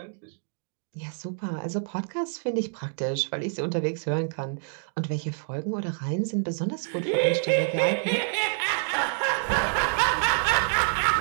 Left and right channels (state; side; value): silent; left; 60 dB below the other